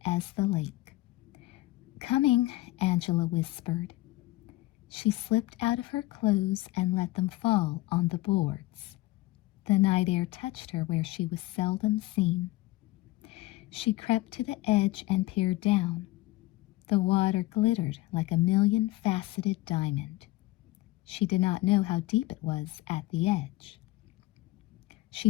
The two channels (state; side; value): quieter; right; 18.6 dB